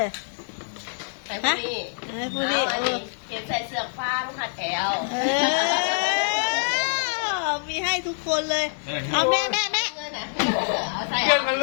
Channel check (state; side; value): silent; right; 62 dB below the other